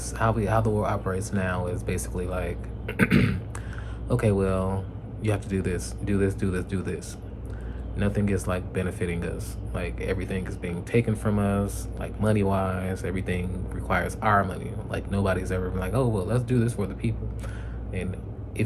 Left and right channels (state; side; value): identical; both; correlation 1.00